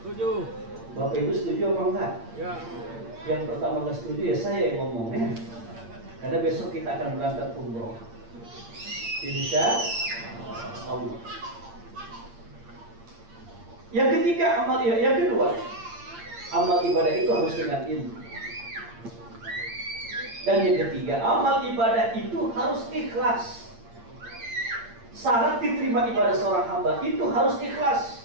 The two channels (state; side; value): late; left; 8.7 ms